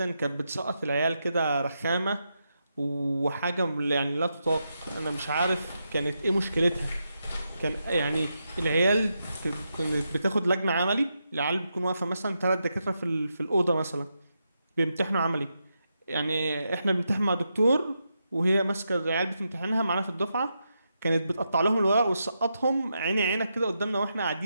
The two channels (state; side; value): inverted; both; correlation -0.85